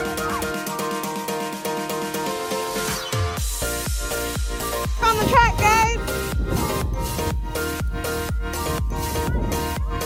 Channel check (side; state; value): both; identical; correlation 1.00